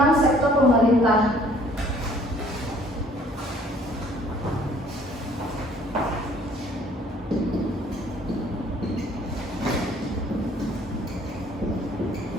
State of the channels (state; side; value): normal; both; correlation 0.58